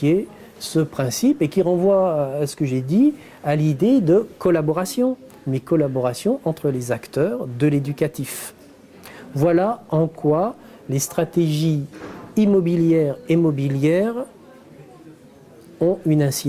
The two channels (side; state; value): both; identical; correlation 1.00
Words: ce principe et qui renvoie à ce que j'ai dit, à l'idée de collaboration, mais collaboration entre les acteurs de l'éducatif. Voilà en quoi les stratégies immobilières et mobilières ont une